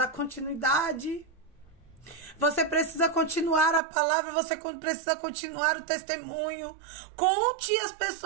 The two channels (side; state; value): left; drops out; at 3.8 s